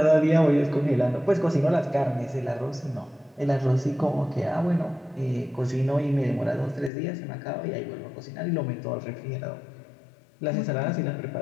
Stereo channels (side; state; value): right; drops out; at 6.9 s